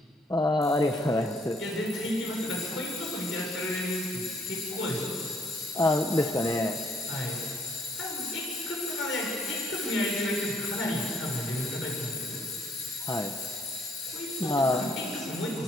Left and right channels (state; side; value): normal; both; correlation 0.66